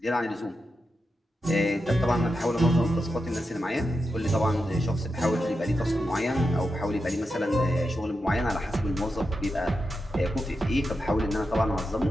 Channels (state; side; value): normal; both; correlation 0.88